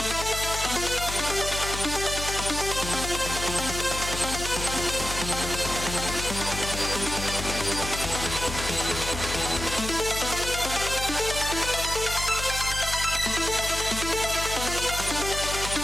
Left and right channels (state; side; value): noise; left; hum, 7 dB below the sound